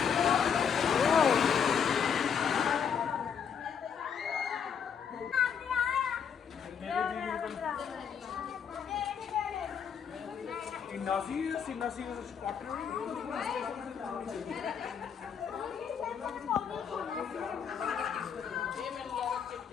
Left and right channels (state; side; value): quieter; right; 7.3 dB